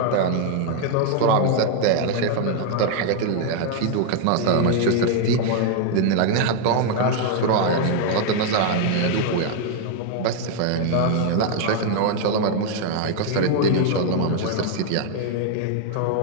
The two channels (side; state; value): both; different; correlation 0.00